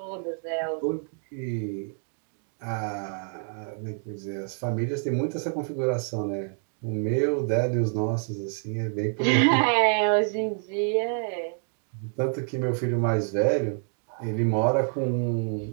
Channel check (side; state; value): left; silent; 60 dB below the other